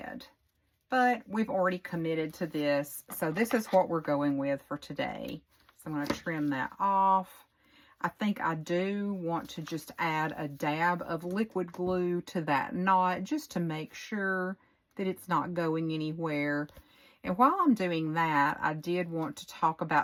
But we've already committed to this, so this is what we're going with for today. So I'm going to trim that off. I think I do want to just add a dab of liquid glue to that knot just to make sure that it's not going anywhere. And while I'm doing that, I did want to talk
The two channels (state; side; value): identical; both; correlation 1.00